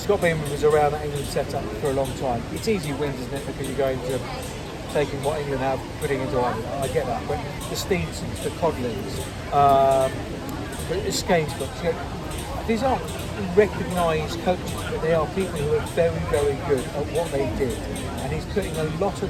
Beaman was around that England setup for a long time. It's easy wins, isn't it? Because you're going to taking what England have, putting into Ireland. I get that, but the Steensons, the Codlins, the Skainsbrook, these aren't recognised coaches, but they are people who are very, very good at what they did. And he's putting a lot of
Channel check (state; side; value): identical; both; correlation 1.00